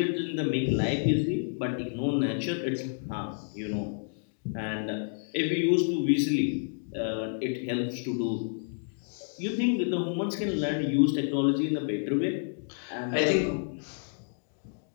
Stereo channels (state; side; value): silent; right; digital silence